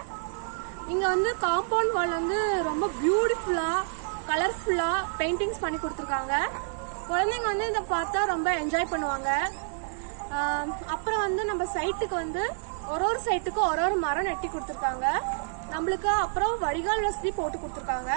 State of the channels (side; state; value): left; silent; digital silence